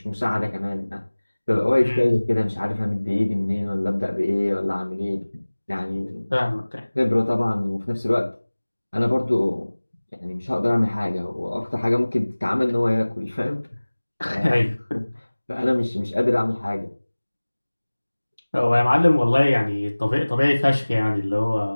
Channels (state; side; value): inverted; both; correlation -1.00